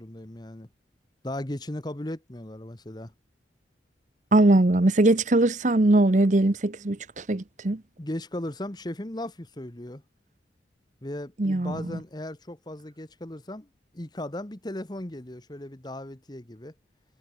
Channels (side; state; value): both; normal; correlation 0.68